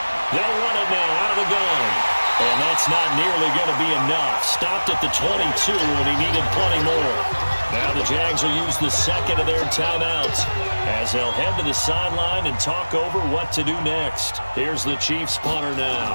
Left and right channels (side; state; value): both; inverted; correlation -1.00